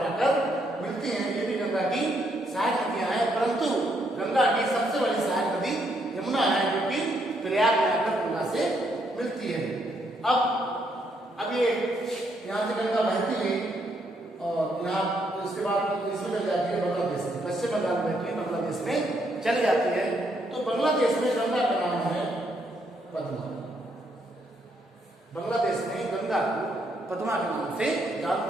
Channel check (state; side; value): normal; both; correlation 0.74